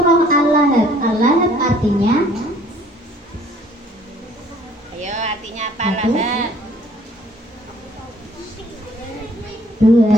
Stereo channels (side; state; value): both; normal; correlation 0.58